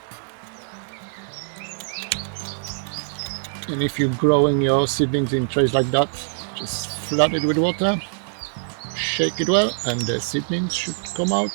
And if you're growing your seedlings in trays like that, just flood it with water, shake it well, and the seedlings should come out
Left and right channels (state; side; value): silent; left; digital silence